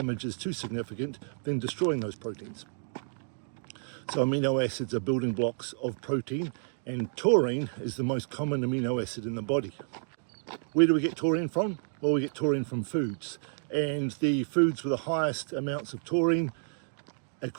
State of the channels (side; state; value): left; silent; digital silence